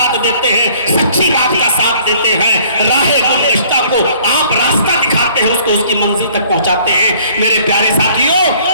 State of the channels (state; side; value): inverted; both; correlation -0.57